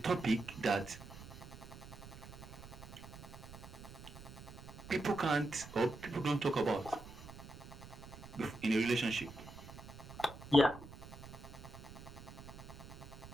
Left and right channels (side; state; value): right; noise; rumble, 14 dB below the sound